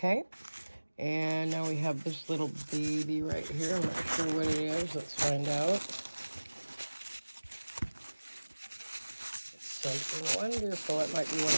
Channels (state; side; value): inverted; both; correlation -1.00